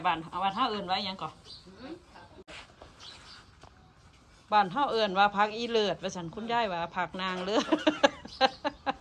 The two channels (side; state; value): both; identical; correlation 1.00